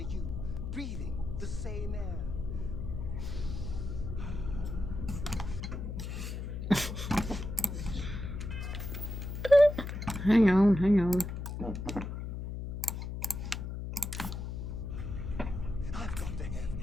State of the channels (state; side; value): noise; left; hum, 5 dB below the sound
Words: breathing the same air. Hang on, hang on. I've got to have